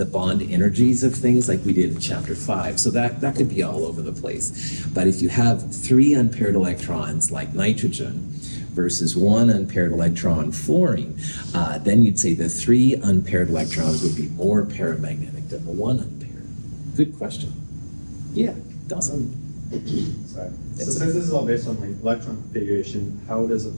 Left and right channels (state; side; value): inverted; both; correlation -1.00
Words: bond energies of things like we did in chapter 5. So that could be all over the place. But if you have 3 unpaired electrons like nitrogen versus 1 unpaired electron fluorine, then you'd say the 3 unpaired electrons would be more paramagnetic than the 1 unpaired. Good question. Yeah, Dawson. Sorry. So since this is all based on like electron configuration, how does a